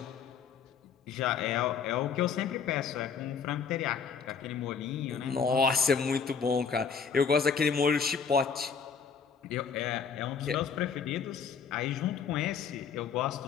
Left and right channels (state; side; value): quieter; right; 6.3 dB